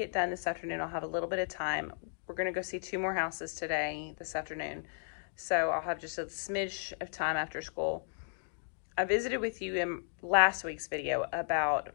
done this afternoon, I'll have a little bit of time. We're gonna go see 2 more houses this afternoon. So I'll have just a smidge of time after school. I visited with you in last week's video about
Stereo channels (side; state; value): right; silent; digital silence